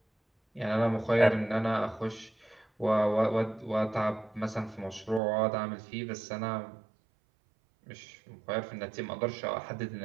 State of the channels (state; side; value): drops out; left; at 5.2 s